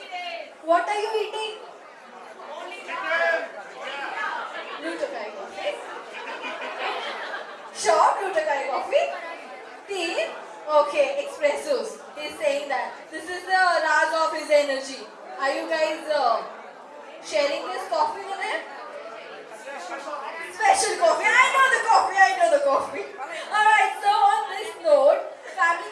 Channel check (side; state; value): both; identical; correlation 1.00